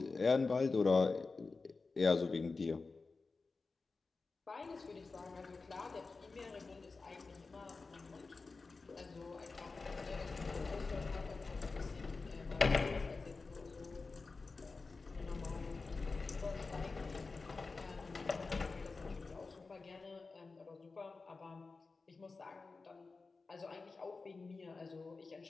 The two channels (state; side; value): quieter; right; 4.0 dB